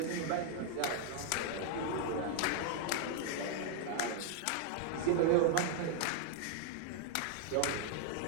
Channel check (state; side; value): different; both; correlation 0.00